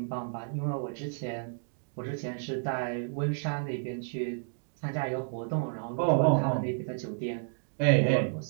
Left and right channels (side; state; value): left; silent; digital silence